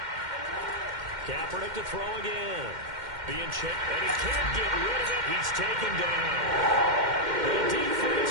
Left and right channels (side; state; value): left; late; 2.1 ms